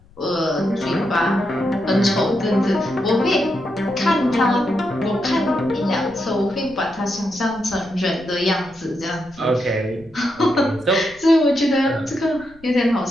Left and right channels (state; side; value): noise; left; rumble, 26 dB below the sound